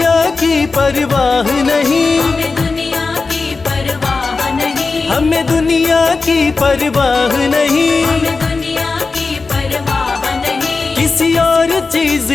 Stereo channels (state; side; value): quieter; right; 4.1 dB